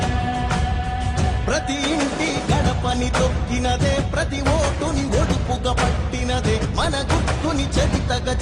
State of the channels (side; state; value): both; identical; correlation 1.00